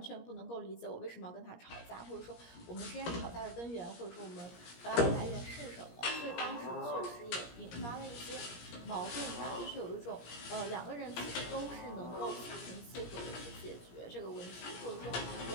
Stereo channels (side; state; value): right; late; 17 ms